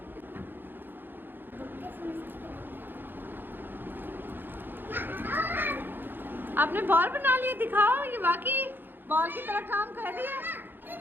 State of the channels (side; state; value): left; late; 0.096 ms